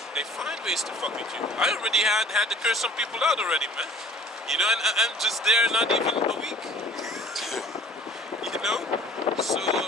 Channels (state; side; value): normal; both; correlation 0.49